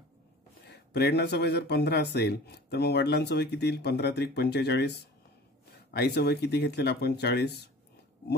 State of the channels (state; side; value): normal; both; correlation 0.43